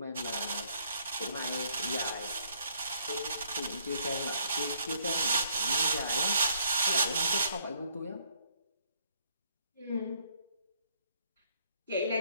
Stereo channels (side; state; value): both; inverted; correlation -0.67